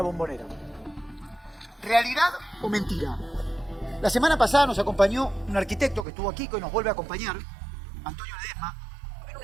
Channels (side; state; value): left; drops out; at 6.1 s